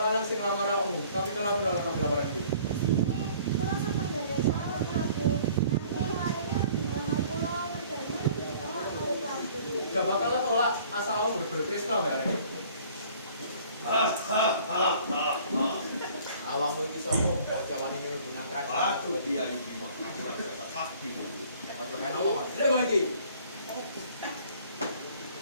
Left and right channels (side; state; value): both; inverted; correlation -0.53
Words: sing lamar aku. Tapi kenapa nolak lamaran gue? Gak bakal lo tolak asal lo bener-bener Krishna mbak Arek. Awakmu iki sapa? Kok jawane ini menggunakan Aduh dia ini mah aku rasa sakti. Ojo kan ngomong. Terima kasih.